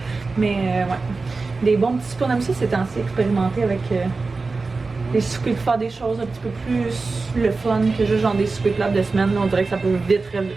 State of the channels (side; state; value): left; quieter; 3.9 dB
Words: Mais ouais, des bons petits soupes. On aime ça ces temps-ci, expérimenter avec les soupers pour faire des choses un petit peu plus le fun que juste genre des soupers plats de semaine. Là, on dirait que ça peut vite